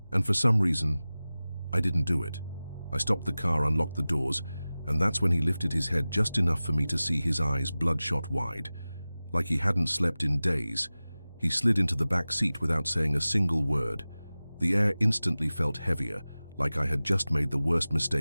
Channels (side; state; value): both; inverted; correlation -0.97